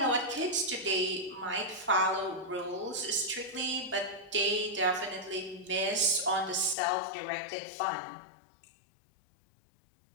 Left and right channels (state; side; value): drops out; right; at 6.8 s